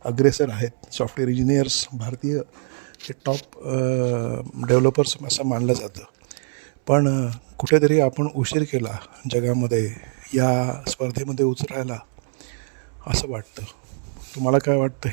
अग्रेसर आहेत. सॉफ्टवेअर इंजिनियर्स भारतीय हे टॉप डेव्हलपर्स असं मानलं जातं. पण कुठेतरी आपण उशीर केला जगामध्ये या स्पर्धेमध्ये उतरायला असं वाटतं. तुम्हाला काय वाटतं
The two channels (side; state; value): left; silent; 63 dB below the other